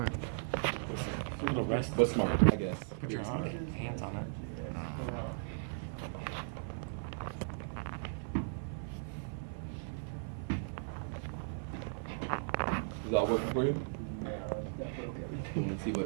A little rest. But smart, I guess. Put your Very smart. hands on it. Is that working for you? No, that broke You everything. want to see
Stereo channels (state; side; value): silent; left; 53 dB below the other